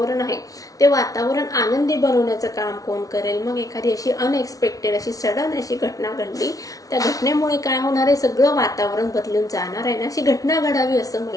आहे ते वातावरण आनंदी बनवण्याचं काम कोण करेल. मग एखादी अशी अनएक्सपेक्टेड अशी सडन अशी घटना घडली, त्या घटनेमुळे काय होणार आहे, सगळं वातावरण बदलून जाणार आहे ना, अशी घटना घडावी असं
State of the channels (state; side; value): late; right; 0.18 ms